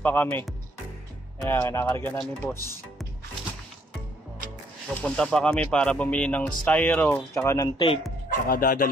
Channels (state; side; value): normal; both; correlation 0.67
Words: kami. Ayan, kinakarga na ni boss. Pupunta pa kami para bumili ng styro, tsaka ng tape, tsaka